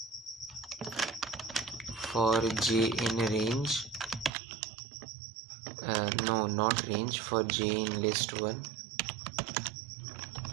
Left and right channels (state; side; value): drops out; left; at 4.3 s